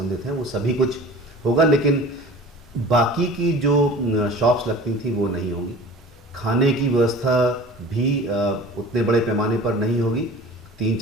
हैं वो सभी कुछ होगा। लेकिन बाकी की जो शॉप्स लगती थी वो नहीं होगी। खाने की व्यवस्था भी उतने बड़े पैमाने पर नहीं होगी।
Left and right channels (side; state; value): both; normal; correlation 0.41